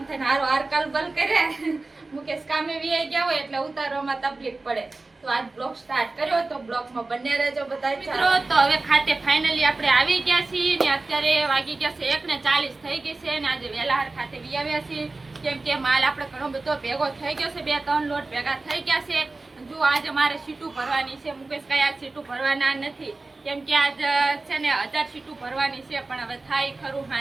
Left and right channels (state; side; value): quieter; left; 3.4 dB